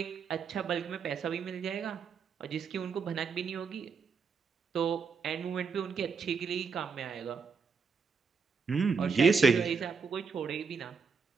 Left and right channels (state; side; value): quieter; left; 5.4 dB